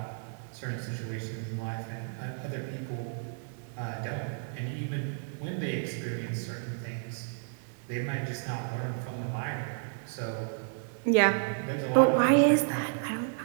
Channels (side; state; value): left; silent; digital silence